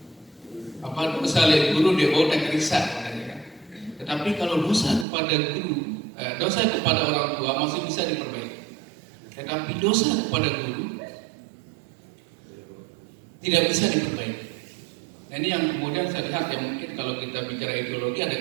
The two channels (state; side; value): drops out; left; at 5.1 s